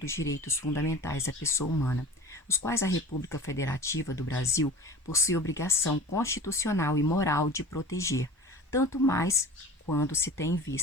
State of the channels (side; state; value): both; normal; correlation 0.39